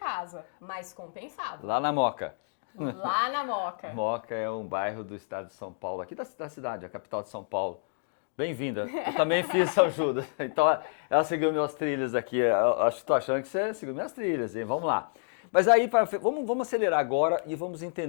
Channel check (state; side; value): silent; right; digital silence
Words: mas compensava. Lá na Moca. Lá na Moca. Moca é um bairro do estado de São Paulo, aqui da cidade, a capital de São Paulo. Bem-vinda. Eu também fiz São Judas. Então, ela seguiu minhas trilhas aqui. Estou achando que você seguiu minhas trilhas, hein? Vamos lá. Mas aí, vamos acelerar agora e vamos